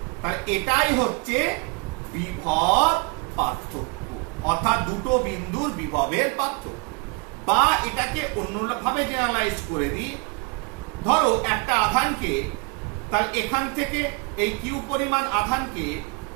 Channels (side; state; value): left; quieter; 32.3 dB